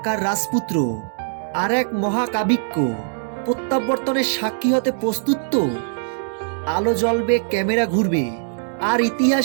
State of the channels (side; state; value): left; silent; digital silence